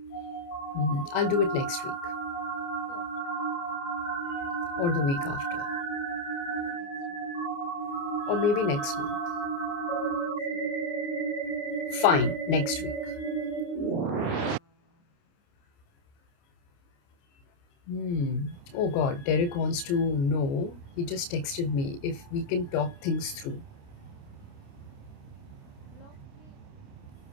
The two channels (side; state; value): right; late; 29 ms